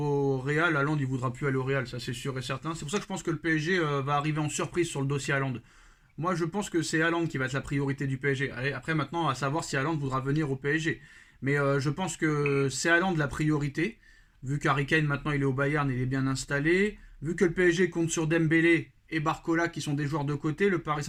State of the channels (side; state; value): both; identical; correlation 1.00